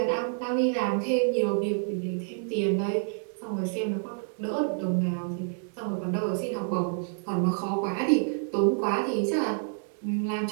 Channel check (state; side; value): silent; left; digital silence